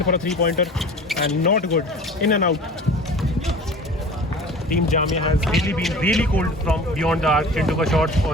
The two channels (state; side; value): normal; both; correlation 0.40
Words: for a 3 pointer and not good, in and out. Team Jamia has really been really cold from beyond the arc. Chintu का शॉट